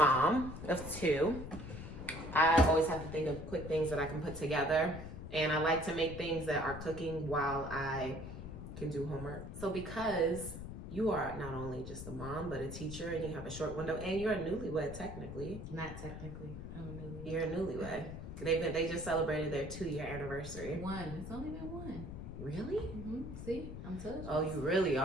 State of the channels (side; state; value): left; noise; rumble, 9 dB below the sound